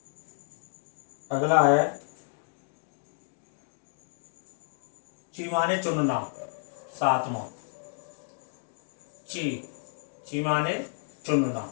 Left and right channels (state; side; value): silent; right; digital silence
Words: ची माने चुनना, सातवां। ची माने चुनना,